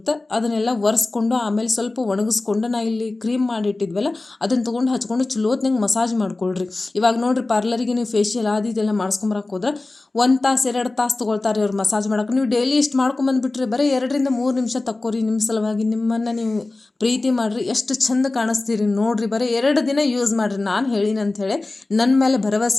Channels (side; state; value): right; quieter; 3.1 dB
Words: ಅದನ್ನೆಲ್ಲ ಒರೆಸ್ಕೊಂಡು ಆಮೇಲೆ ಸ್ವಲ್ಪ ಒಣಗಿಸ್ಕೊಂಡು ನಾ ಇಲ್ಲಿ ಕ್ರೀಮ್ ಮಾಡಿಟ್ಟಿದ್ವಲ್ಲ ಅದನ್ನು ತೊಗೊಂಡು ಹಚ್ಕೊಂಡು ಚಲೋತ್ನಂಗೆ ಮಸಾಜ್ ಮಾಡ್ಕೊಳ್ರಿ. ಇವಾಗ ನೋಡಿರಿ, ಪಾರ್ಲರಿಗೆ ನೀವು ಫೇಶಿಯಲ್ ಅದು ಇದೆಲ್ಲ ಮಾಡಿಸ್ಕೊಂಬರಕ್ಕೆ ಹೋದ್ರೆ 1 ತಾಸು 2 ತಾಸು ತೊಗೊಳ್ತಾರೆ ಅವ್ರು ಮಸಾಜ್ ಮಾಡೋಕೆ. ನೀವು ಡೈಲಿ ಇಷ್ಟು ಮಾಡ್ಕೊಂಬಂದುಬಿಟ್ರೆ ಬರೀ 2ರಿಂದ 3 ನಿಮಿಷ ತಕ್ಕೋರಿ. ನಿಮ್ಮ ಸಲುವಾಗಿ ನಿಮ್ಮನ್ನು ನೀವು ಪ್ರೀತಿ ಮಾಡಿರಿ, ಎಷ್ಟು ಚಂದ ಕಾಣಿಸ್ತೀರಿ ನೋಡಿರಿ. ಬರೀ 2 ದಿನ ಯೂಸ್ ಮಾಡಿರಿ, ನಾನು ಹೇಳಿನ ಅಂಥೇಳಿ ನನ್ನ ಮೇಲೆ